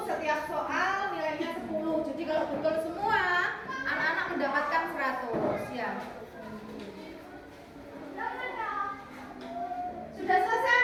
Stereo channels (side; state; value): both; identical; correlation 1.00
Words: setiap soal nilainya 10. Jadi kalau betul semua, anak-anak mendapatkan 100 ya. Sudah selesai